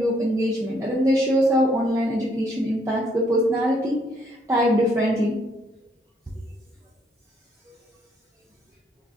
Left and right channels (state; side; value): normal; both; correlation 0.69